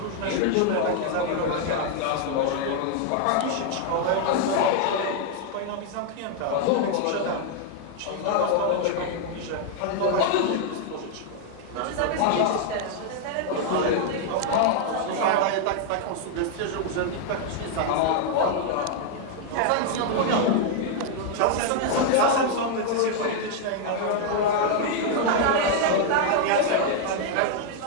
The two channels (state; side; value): different; both; correlation 0.00